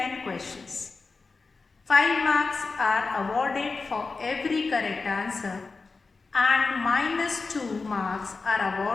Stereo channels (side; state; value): right; quieter; 4.2 dB